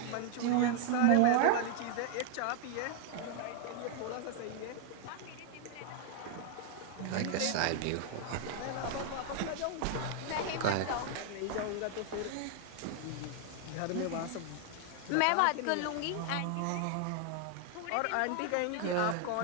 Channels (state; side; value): different; both; correlation 0.00